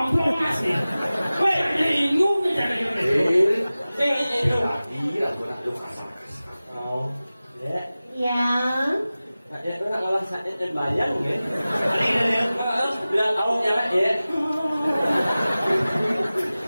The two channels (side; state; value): both; inverted; correlation -0.97